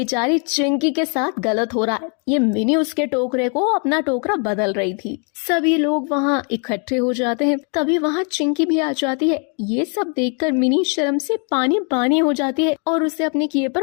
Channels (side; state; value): right; quieter; 39.2 dB